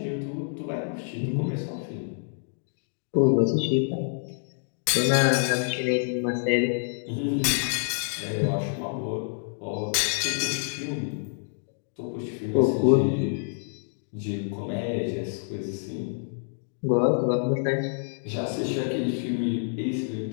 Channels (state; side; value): silent; right; digital silence